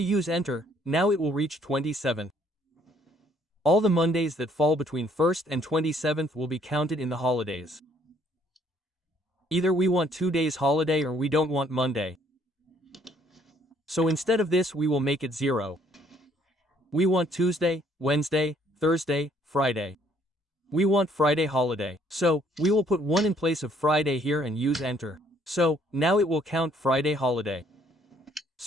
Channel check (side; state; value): both; normal; correlation 0.64